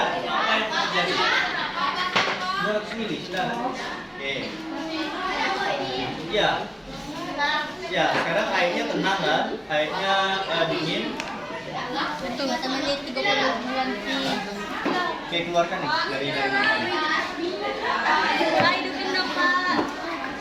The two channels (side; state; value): both; identical; correlation 1.00